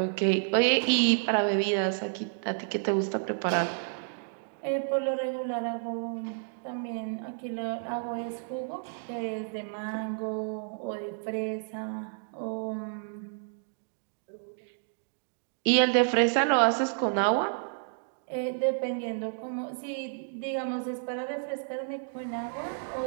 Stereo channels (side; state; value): left; silent; digital silence